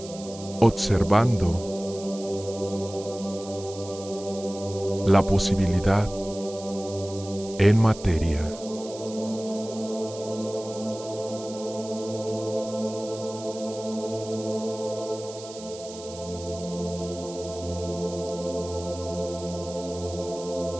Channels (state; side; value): noise; right; hiss, 15 dB below the sound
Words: Observando la posibilidad en materia.